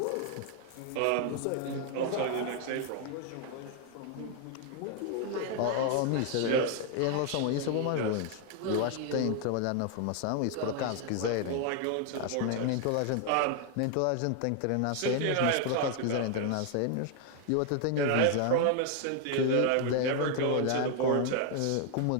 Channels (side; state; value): both; different; correlation 0.00